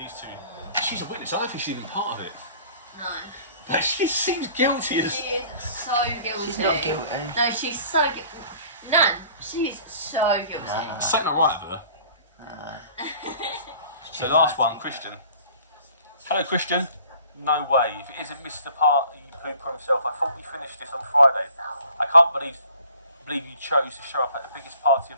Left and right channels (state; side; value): inverted; both; correlation -0.51